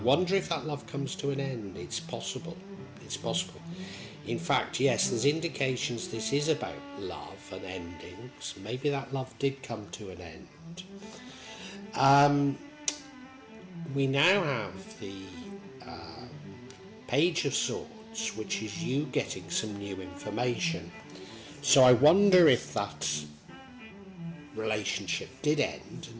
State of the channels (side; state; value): both; identical; correlation 1.00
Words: if that love comes to an end. It's possible. It's possible. In fact, yes, there's indications this is about love and endings. Maybe that love did come to an end. We now have the Page of Swords, which is you getting some new information. So I wonder if that relationship did end